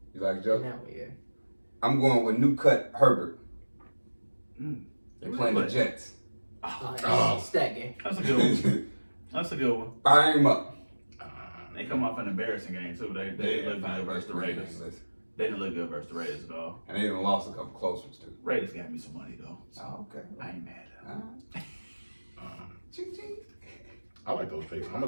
You like In Joe? that one, yeah. I'm going with new cut Herbert. Mm. They're playing the Jets. Oh. Stat game. That's a good one. That's a good one. Fire him up. They come off an embarrassing game too. They look good versus the Raiders. They didn't look good versus the Raiders though. And they even lost a couple close ones too. Raiders got me some money though. So Oh, okay. I ain't mad at them. Ching, ching. I like those picks. I'm gonna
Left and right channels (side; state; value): both; inverted; correlation -1.00